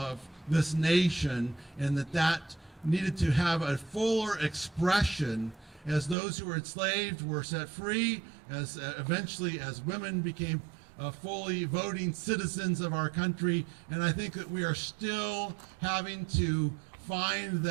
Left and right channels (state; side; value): drops out; left; at 6.2 s